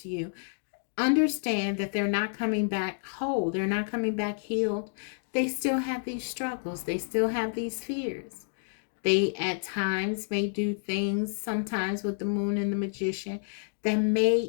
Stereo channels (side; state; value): right; silent; digital silence